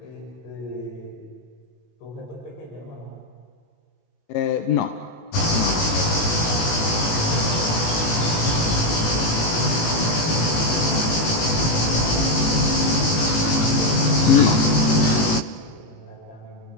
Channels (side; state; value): right; late; 18 ms